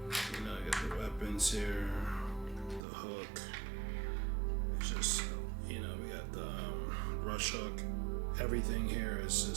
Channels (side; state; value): left; drops out; at 2.9 s